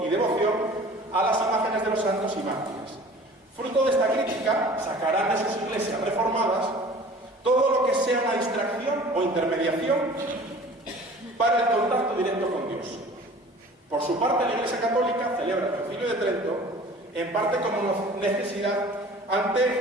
y devoción a las imágenes de los santos y mártires. Fruto de esta crítica, sacarán de sus iglesias reformadas todo lo que sea una distracción o intermediación para el contacto directo con Dios. Por su parte, la Iglesia Católica celebra el Concilio de Trento, en parte como necesidad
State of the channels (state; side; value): normal; both; correlation 0.45